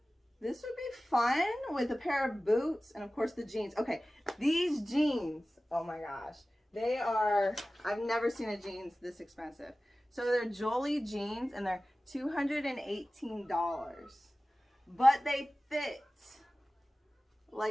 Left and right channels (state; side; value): normal; both; correlation 0.96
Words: this would be fun with a pair of boots and of course the jeans. Okay, these jeans, oh my gosh. They are, I've never seen a jeans this expensive. So they're Jolie jeans and they're $218. But they fit